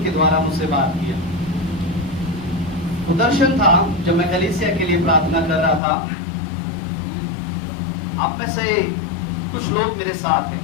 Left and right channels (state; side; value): drops out; right; at 5.8 s